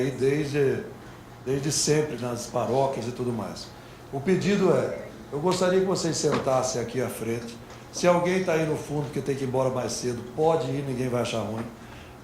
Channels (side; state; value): both; identical; correlation 1.00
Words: desde sempre nas paróquias e tudo mais. O pedido eu gostaria que vocês sentassem aqui à frente. Se alguém está aí no fundo porque tem que ir embora mais cedo, pode ir, ninguém vai achar ruim.